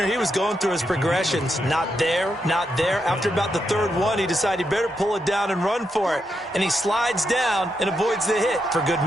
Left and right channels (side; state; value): both; normal; correlation 0.82